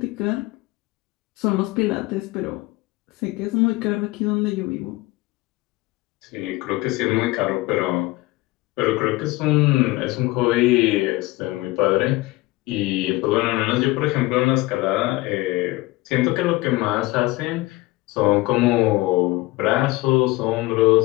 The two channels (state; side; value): quieter; right; 20.5 dB